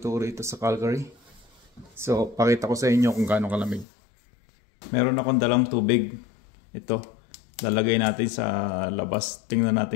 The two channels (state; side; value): drops out; right; at 3.9 s